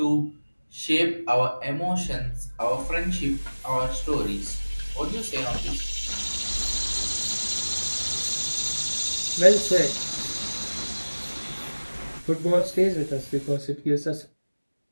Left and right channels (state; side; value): inverted; both; correlation -1.00